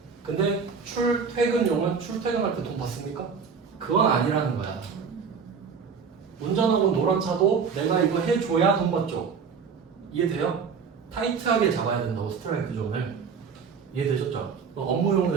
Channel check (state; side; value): quieter; left; 5.9 dB